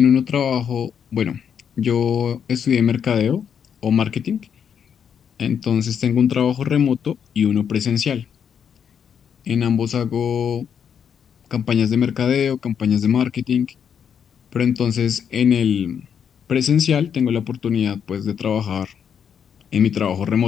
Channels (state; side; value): quieter; right; 7.8 dB